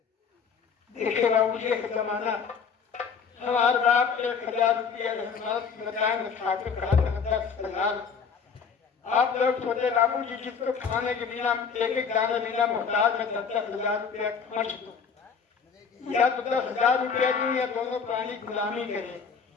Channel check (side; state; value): right; quieter; 6.1 dB